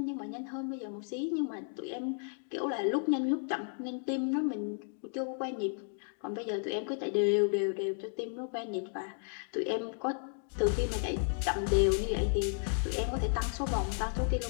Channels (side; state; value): right; silent; 55 dB below the other